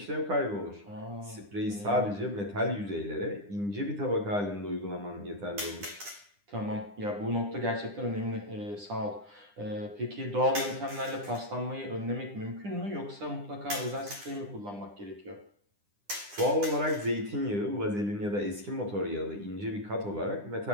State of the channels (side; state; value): left; late; 9.9 ms